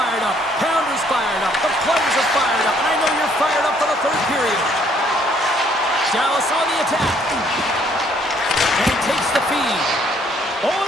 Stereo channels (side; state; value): both; normal; correlation 0.65